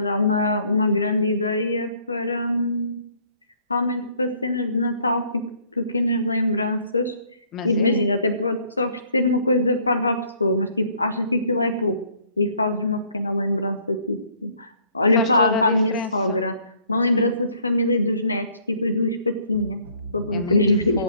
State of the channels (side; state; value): both; inverted; correlation -0.62